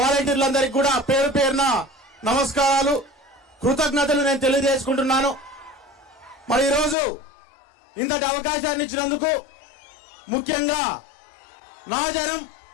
కూడా పేరు పేరున నమస్కారాలు, కృతజ్ఞతలు నేను తెలియజేసుకుంటున్నాను. మరి ఈరోజు ఇంతటి అవకాశాన్ని ఇచ్చినందుకు, ముఖ్యంగా నా జనం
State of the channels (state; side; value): drops out; right; at 7.0 s